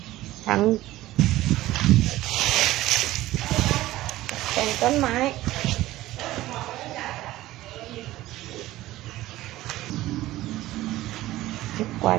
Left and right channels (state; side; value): quieter; left; 16.3 dB